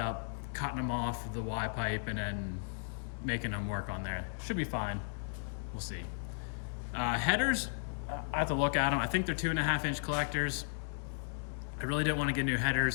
cutting them off the Y pipe and then making them work on there. Should be fine, we'll see. Headers, I have to look at them. I think they're 2.5-inch collectors. I really didn't want to get new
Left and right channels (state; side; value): silent; right; digital silence